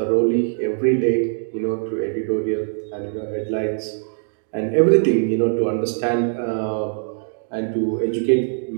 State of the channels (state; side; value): silent; left; digital silence